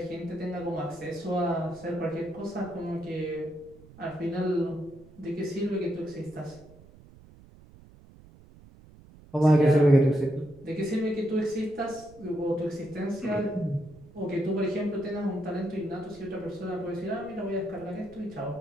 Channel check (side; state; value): right; noise; rumble, 22 dB below the sound